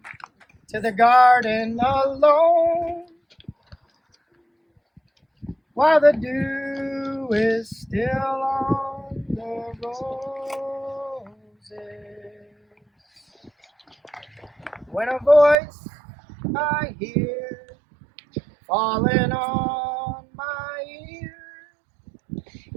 to the garden alone, while the dew is still on the roses. When a voice I hear falling on my ear,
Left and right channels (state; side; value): drops out; left; at 15.6 s